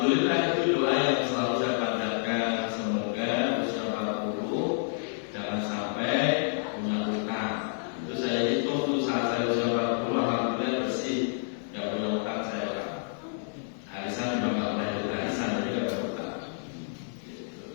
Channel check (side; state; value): right; silent; digital silence